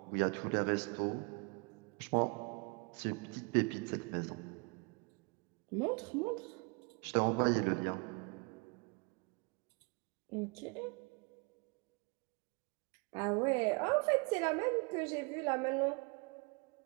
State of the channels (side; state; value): left; quieter; 32.1 dB